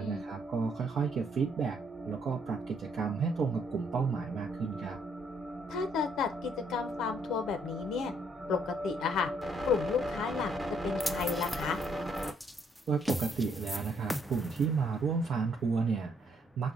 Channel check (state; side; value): normal; both; correlation 0.69